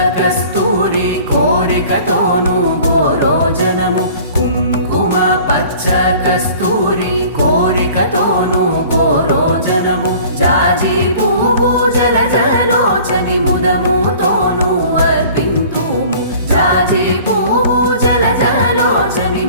कस्तूरी कोरिकतोनु गोरोजनमु, कुङ्कुम पच्च कस्तूरी कोरिकतोनु गोरोजनमु, जाजि पुव्वु जलजलोचनि मुदमुतोनु अर्पिन्तुमु, जाजि पुव्वु जलजलोचनि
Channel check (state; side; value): inverted; both; correlation -0.48